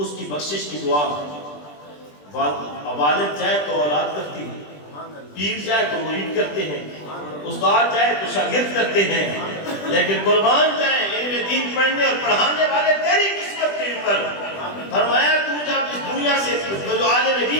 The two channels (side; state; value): right; late; 20 ms